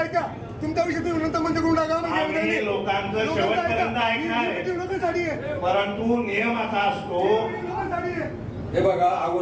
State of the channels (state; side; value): identical; both; correlation 1.00